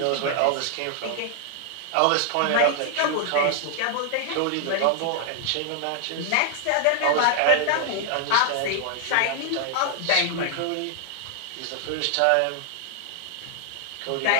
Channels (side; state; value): both; different; correlation 0.00